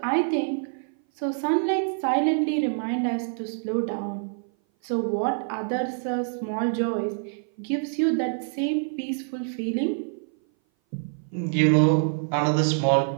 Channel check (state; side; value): silent; left; 58 dB below the other